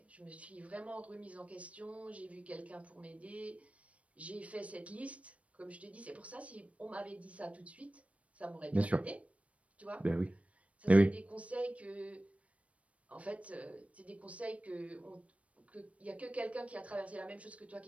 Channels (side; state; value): left; late; 0.064 ms